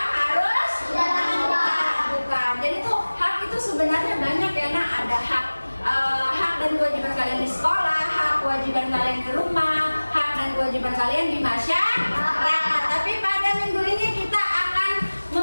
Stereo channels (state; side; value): inverted; both; correlation -1.00